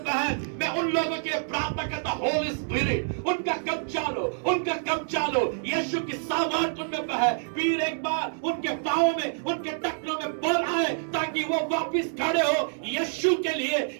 मैं उन लोगों के प्रार्थना करता, होली स्पिरिट उनका कब्जा लो, उनका कब्जा लो। यीशु की सामर्थ उनमें बहे, फिर एक बार उनके पांवों में, उनके टखनों में बल आए ताकि वो वापिस खड़े हो यीशु के लिए,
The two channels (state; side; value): silent; left; digital silence